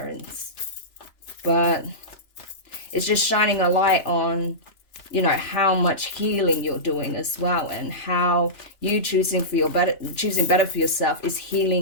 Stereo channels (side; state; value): right; late; 2.9 ms